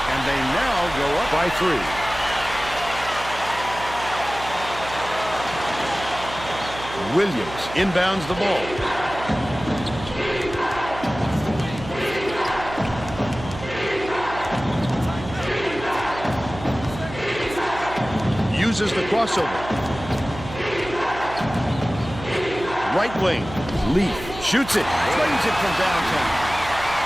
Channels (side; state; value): right; noise; hum, 12 dB below the sound